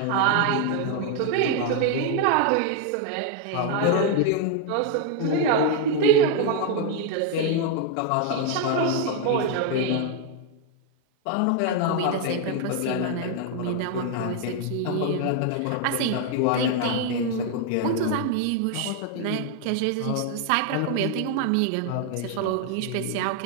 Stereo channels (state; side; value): different; both; correlation 0.00